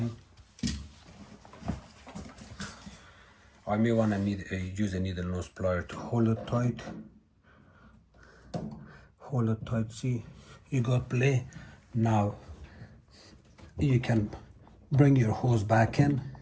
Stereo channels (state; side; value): identical; both; correlation 1.00